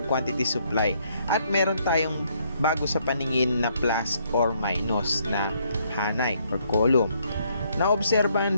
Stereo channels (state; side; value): inverted; both; correlation -0.70